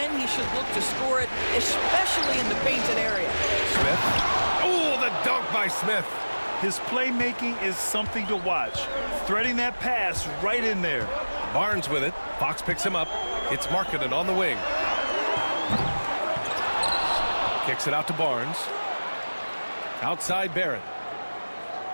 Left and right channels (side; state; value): both; inverted; correlation -1.00